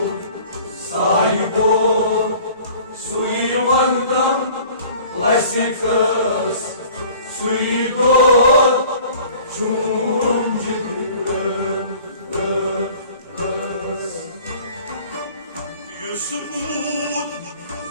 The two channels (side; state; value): both; inverted; correlation -0.48